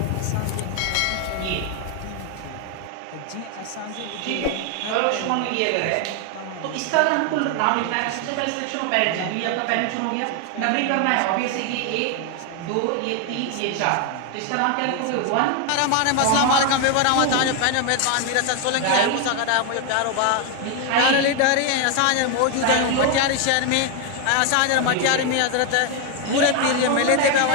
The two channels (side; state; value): both; different; correlation 0.01